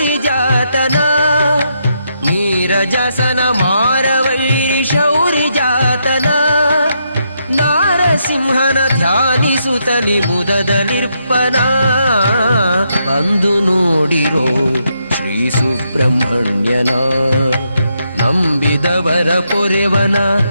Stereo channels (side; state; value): both; inverted; correlation -0.79